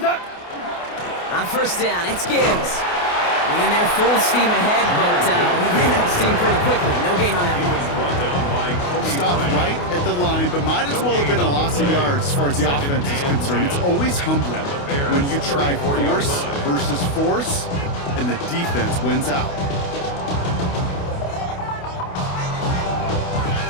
On first down, it's Gibbs. Winning there full steam ahead, but he ran out of steam pretty quickly. No gain on that one. Stopped right at the line, but might as well have been a loss of yards as far as the offense is concerned. It's always humbling when you try force versus force, and the defense wins out.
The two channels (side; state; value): right; late; 28 ms